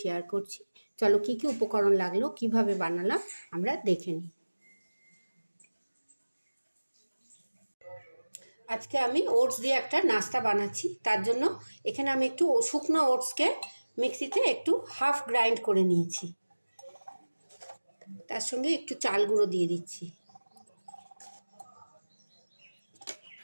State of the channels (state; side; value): inverted; both; correlation -1.00